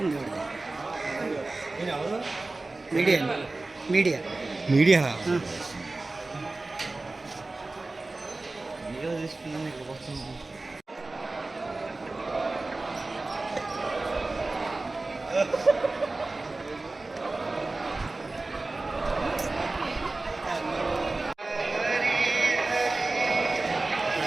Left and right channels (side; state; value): left; quieter; 3.2 dB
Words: ఉంది media media media